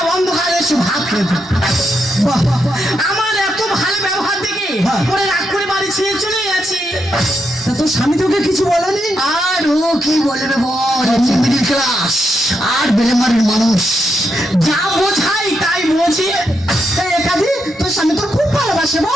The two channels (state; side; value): normal; both; correlation 0.82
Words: অন্ধকারে এসে ভাত খেত। আমার এত ভালো ব্যবহার দেখে ওরা রাগ করে বাড়ি ছেড়ে চলে গেছে। তা তোর স্বামী তোকে কিছু বলেনি? আর ও কি বলবে বল, মিডিল ক্লাস আর বেলেমারির মানুষ। যা বোঝাই তাই বোঝে। ভালোবাসি? এই কাজী তোর স্বামী তোর খুব ভালোবাসে